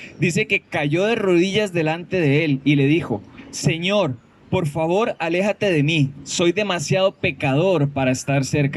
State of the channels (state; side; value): identical; both; correlation 1.00